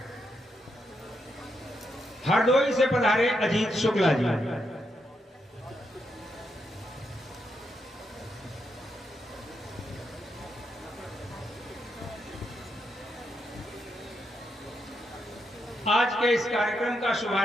हरदोई से पधारे अजीत शुक्ला जी, आज के इस कार्यक्रम का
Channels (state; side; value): normal; both; correlation 0.82